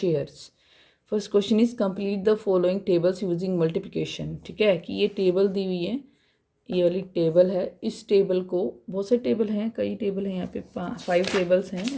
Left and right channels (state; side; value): identical; both; correlation 1.00